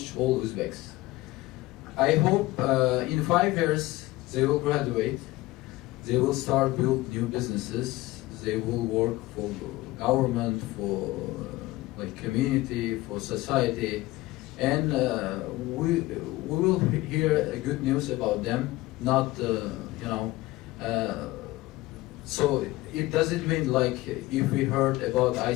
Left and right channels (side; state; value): right; quieter; 18.9 dB